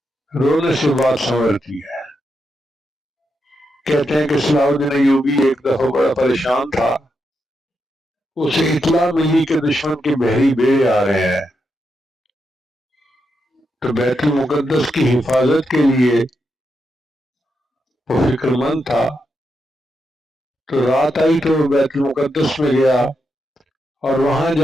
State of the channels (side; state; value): both; normal; correlation 0.84